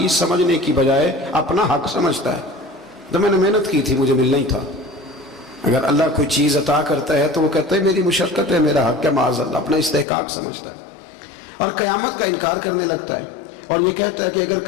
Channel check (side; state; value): right; drops out; at 10.1 s